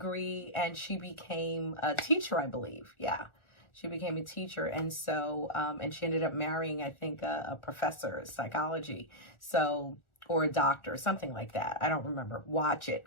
and she became a teacher, I believe. Yeah. She became a teacher. And so, and she ended up marrying, I think, a professor of psychology. So, or a doctor, something like that. I don't remember. Watch it.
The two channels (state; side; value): late; right; 1.4 ms